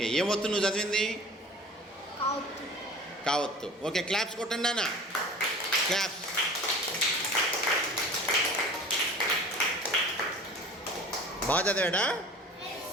ఏం వత్తు నువ్వు చదివింది? కావత్తు. ఓకే, క్లాప్స్ కొట్టండి నాన్న, క్లాప్స్. బాగా చదివాడా?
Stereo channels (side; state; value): both; normal; correlation 0.41